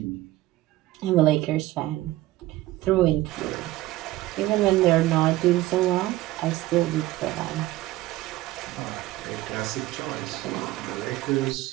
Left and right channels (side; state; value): left; quieter; 16.9 dB